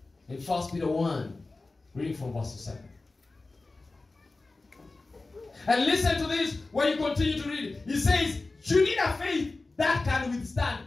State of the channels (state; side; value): quieter; right; 3.4 dB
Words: In 1 Peter 1, reading from verse 7. And listen to this when you continue to read. He says, you need a faith that can withstand